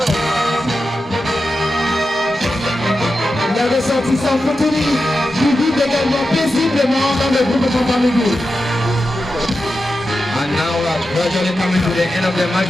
Les ressortissants Koutini qui vivent également paisiblement dans le groupe de Bamingui. And now we are gradually coming to the end of the match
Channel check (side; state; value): both; normal; correlation 0.90